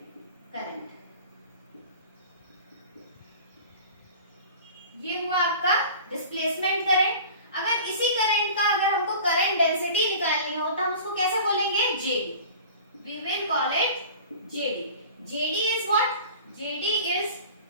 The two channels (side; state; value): both; inverted; correlation -0.40